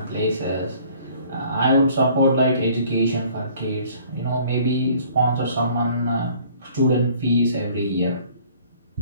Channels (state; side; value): inverted; both; correlation -0.55